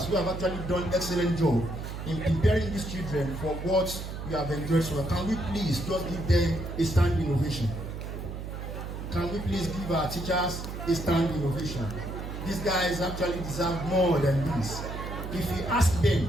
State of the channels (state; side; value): noise; right; hum, 7 dB below the sound